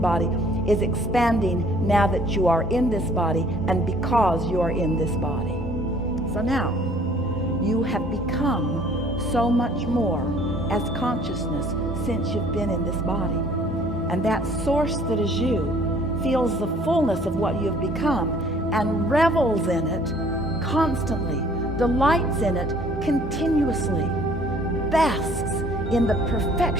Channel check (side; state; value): both; normal; correlation 0.56